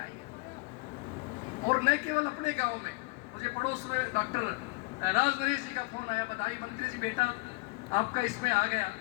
है। और न केवल अपने गांव में, मुझे पड़ोस में डॉक्टर राज नरेश जी का फोन आया, बधाई मंत्री जी, बेटा आपका इसमें आ गया,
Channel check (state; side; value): quieter; right; 26.2 dB